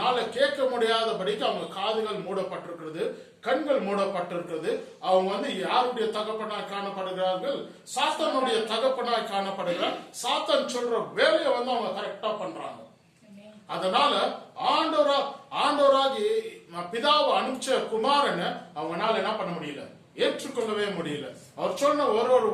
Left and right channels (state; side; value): identical; both; correlation 1.00